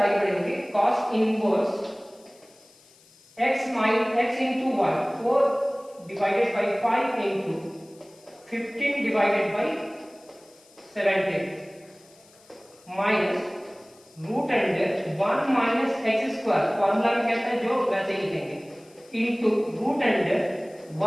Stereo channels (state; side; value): noise; left; hiss, 28 dB below the sound